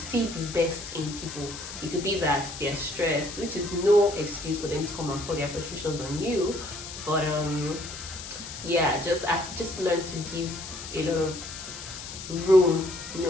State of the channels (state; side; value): noise; left; hiss, 10 dB below the sound